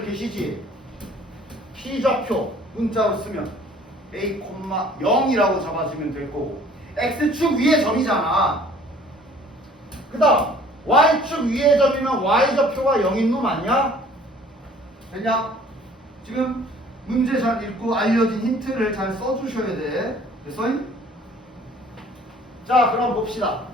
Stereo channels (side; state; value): both; normal; correlation 0.54